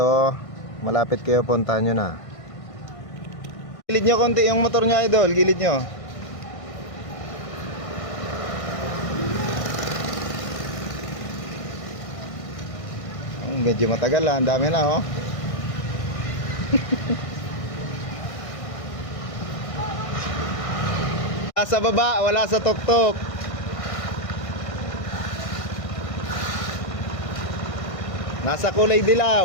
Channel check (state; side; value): late; right; 1.6 ms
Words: malapit kayo, puntahan nyo na. Gilid nyo konti yung motor nyo, idol. Gilid nyo. Medyo matagal ang dami na, oh. Wala sa baba, wala sa tuktok. Nasa kulay